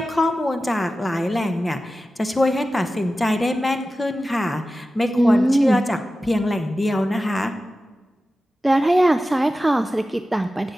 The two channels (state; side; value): normal; both; correlation 0.94